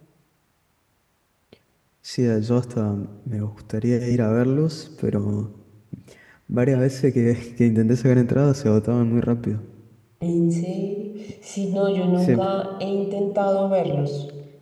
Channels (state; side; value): identical; both; correlation 1.00